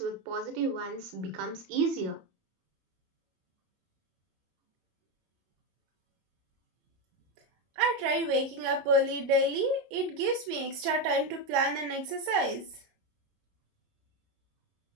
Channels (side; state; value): left; late; 18 ms